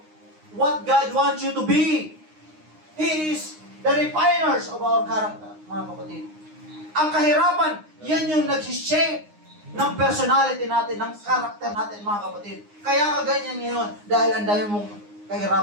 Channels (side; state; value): left; late; 9.7 ms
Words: what God wants you to be. He is the refiners of our character, mga kapatid. Ang kahirapan, yan yung nag-shape ng personality natin, ng character natin, mga kapatid. Kaya ka ganyan ngayon dahil ang dami mong